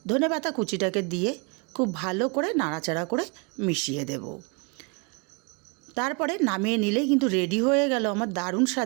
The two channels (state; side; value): quieter; left; 32.6 dB